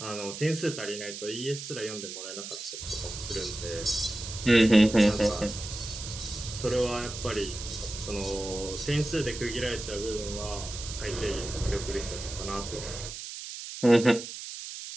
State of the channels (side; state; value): right; noise; hiss, 9 dB below the sound